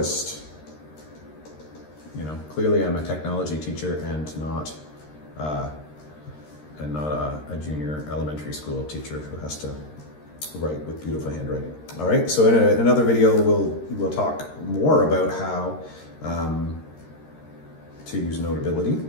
Clearly I'm a technology teacher and not a junior elementary school teacher who has to write with beautiful handwriting. All right, so in another video we'll talk more about how to use Notability.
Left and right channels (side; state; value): right; late; 13 ms